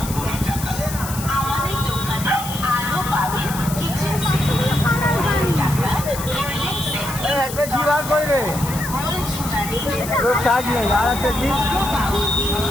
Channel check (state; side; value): noise; left; hiss, 10 dB below the sound